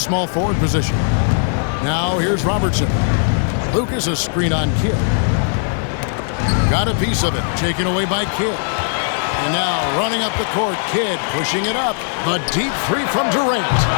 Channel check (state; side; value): silent; right; 67 dB below the other